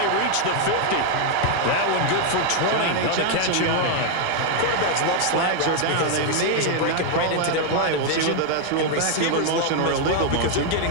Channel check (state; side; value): different; both; correlation 0.00